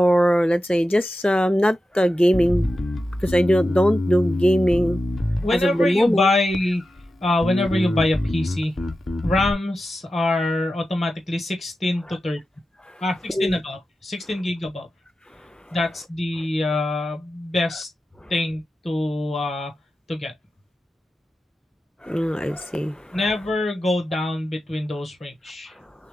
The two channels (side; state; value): both; normal; correlation 0.92